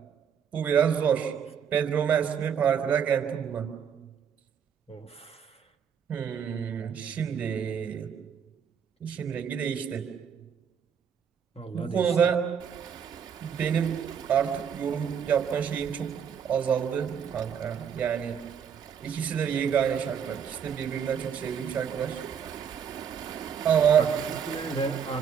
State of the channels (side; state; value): left; quieter; 7.6 dB